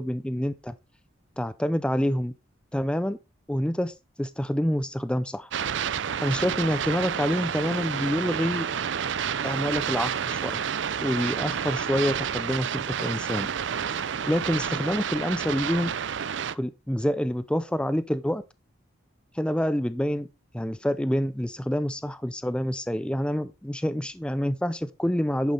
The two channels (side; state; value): both; normal; correlation 0.74